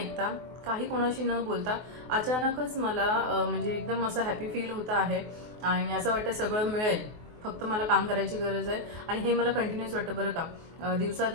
काही कोणाशी न बोलता अचानकच मला म्हणजे एकदम असं हॅपी फील होतं आहे. आणि असं वाटतं सगळं मिळेल, फक्त मला काम करायची गरज आहे. आणि हे मला कंटिन्यूस वाटतं बरं का.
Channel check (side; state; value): left; late; 24 ms